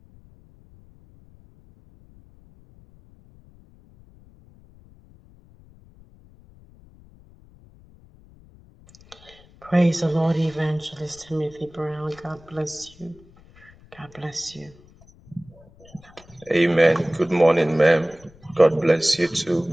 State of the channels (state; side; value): noise; left; rumble, 26 dB below the sound